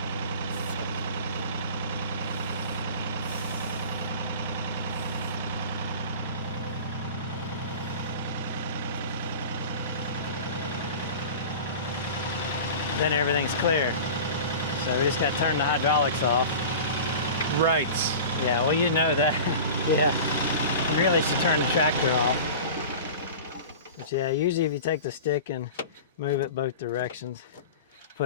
then everything's clear. So we just got to turn the hydraulics off. Right. Yeah, well, you know that. Yeah, you really should turn the tractor off. But yeah, usually if you take the stick and move it both directions,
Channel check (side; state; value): both; inverted; correlation -0.35